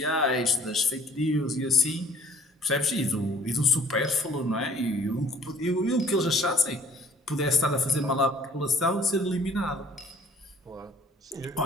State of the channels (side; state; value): both; normal; correlation 0.55